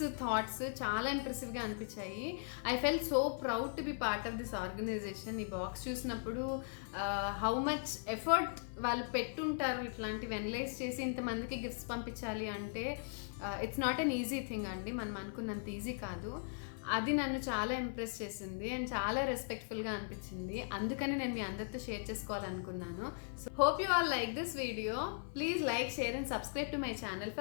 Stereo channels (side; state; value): right; silent; 52 dB below the other